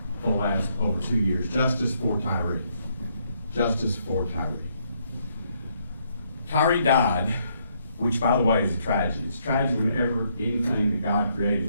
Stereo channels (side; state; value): both; inverted; correlation -0.73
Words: for the last over 2 years: justice for Tyre. Justice for Tyre. Tyre died, which, by the way, is a tragedy. It's a tragedy whenever anything that God